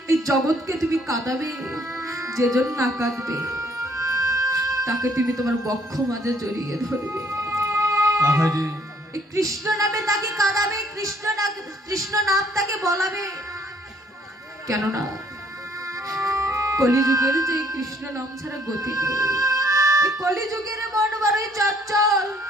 এই জগৎকে তুমি কাঁদাবে, যেজন না কাঁদবে তাকে তুমি তোমার বক্ষ মাঝে জড়িয়ে ধরবে। এই কৃষ্ণ নামে তাকে কাঁদাবে, কৃষ্ণ নাম তাকে বলাবে। কেননা কলিযুগের যে কৃষ্ণ নাম ছাড়া গতি নেই। এই কলিযুগের মন বড়ই চঞ্চল,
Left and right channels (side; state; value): both; normal; correlation 0.64